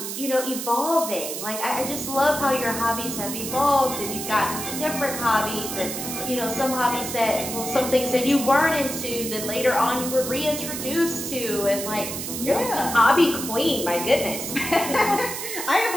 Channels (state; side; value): noise; right; hiss, 6 dB below the sound